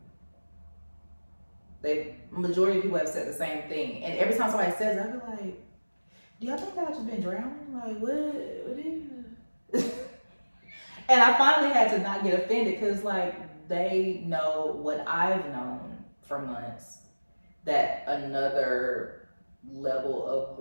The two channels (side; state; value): both; inverted; correlation -1.00